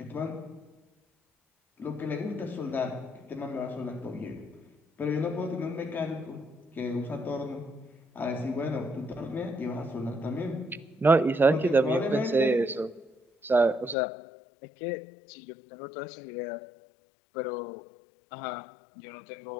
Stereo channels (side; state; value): right; drops out; at 14.0 s